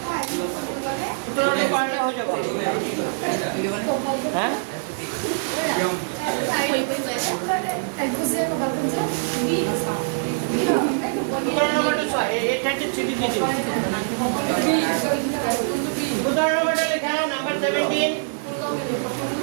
17 পারলে হয়ে যাবে হ্যাঁ নম্বরটো 6 এটা হচ্ছে চিঠি দিয়েছি 17 নম্বরটা লেখা নাম্বার 17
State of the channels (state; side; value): silent; left; digital silence